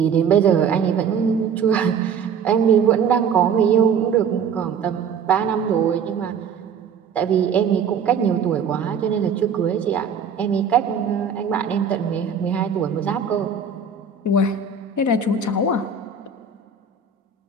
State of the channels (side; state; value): left; quieter; 6.2 dB